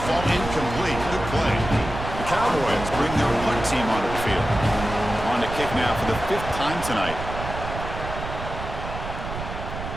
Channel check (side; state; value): right; noise; rumble, 8 dB below the sound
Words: fall incomplete. Good play. The Cowboys bring their punt team onto the field. On to kick now for the 5th time tonight.